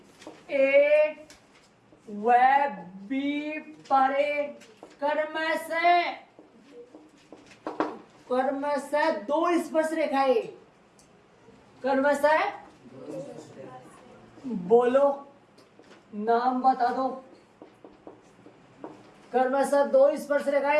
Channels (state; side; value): identical; both; correlation 1.00